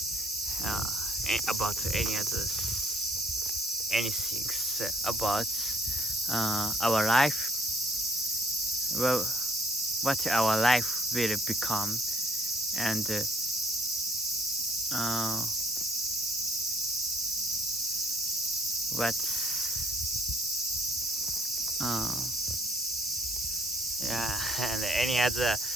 about anything about our life, well, what our life will become, and and any other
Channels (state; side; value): normal; both; correlation 0.64